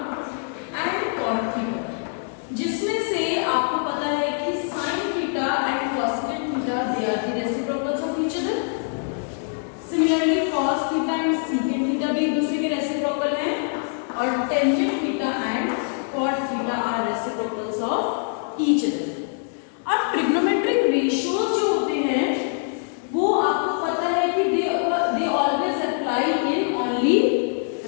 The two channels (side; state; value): right; silent; digital silence